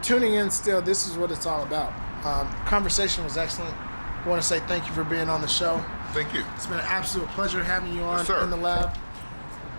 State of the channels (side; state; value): both; inverted; correlation -1.00